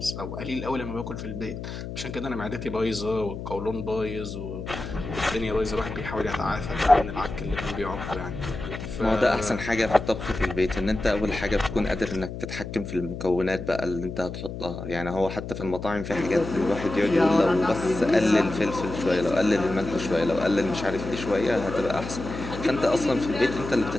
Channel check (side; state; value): left; noise; hum, 8 dB below the sound